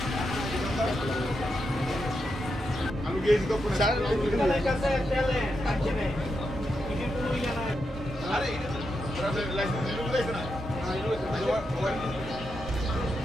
আলু গেছি তো আরে লাইসেন্স না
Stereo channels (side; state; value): both; normal; correlation 0.85